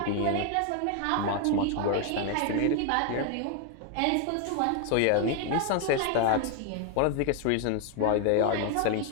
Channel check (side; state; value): both; different; correlation 0.01